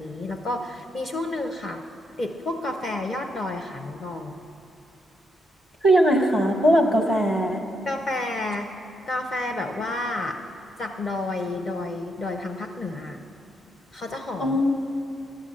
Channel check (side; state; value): both; normal; correlation 0.78